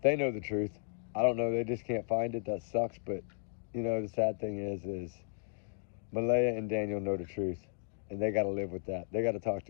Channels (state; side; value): silent; right; digital silence